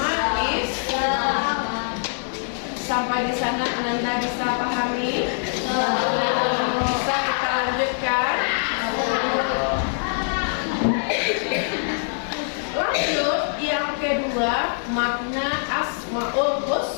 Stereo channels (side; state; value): right; silent; digital silence